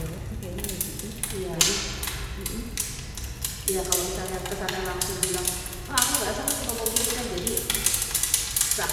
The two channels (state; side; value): identical; both; correlation 1.00